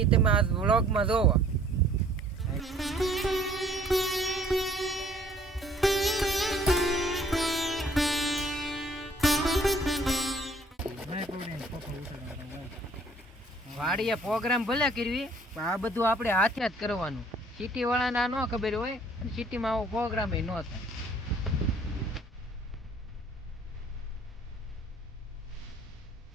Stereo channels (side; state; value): both; normal; correlation 0.58